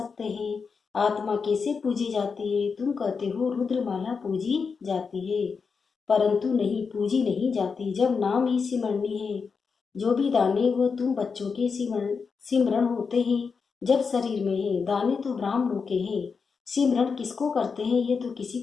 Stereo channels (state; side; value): quieter; right; 5.4 dB